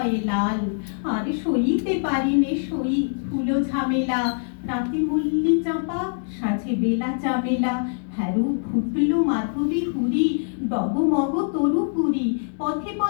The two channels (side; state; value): right; silent; digital silence